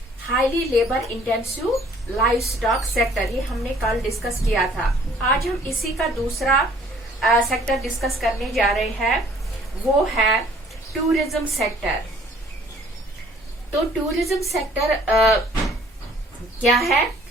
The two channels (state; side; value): normal; both; correlation 0.57